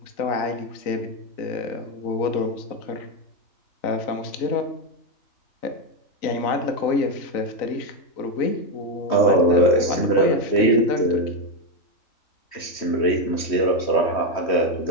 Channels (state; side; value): late; right; 3.1 ms